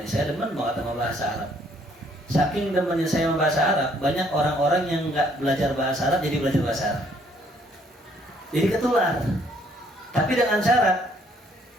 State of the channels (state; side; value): normal; both; correlation 0.65